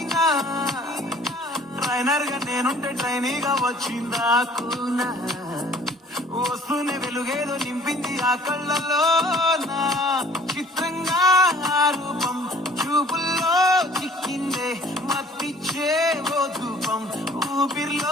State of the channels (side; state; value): both; normal; correlation 0.53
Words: ట్రైనర్ గా నేనుంటే ట్రైనీగా వచ్చిందా కూనా, వస్తూనే వెలుగేదో నింపింది ఆ కళ్ళలో నా. చిత్రంగా ఆ రూపం చూపుల్లో చిక్కిందే, మత్తిచ్చే ఓ ధూపం